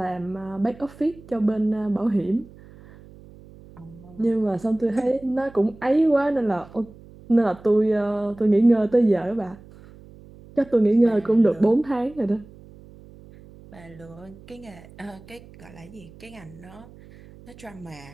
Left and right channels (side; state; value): right; noise; hum, 21 dB below the sound